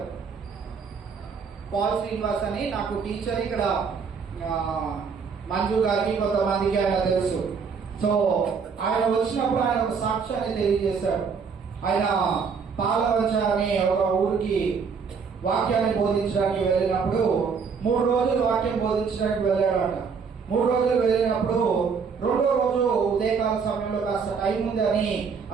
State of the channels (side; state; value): left; quieter; 5.8 dB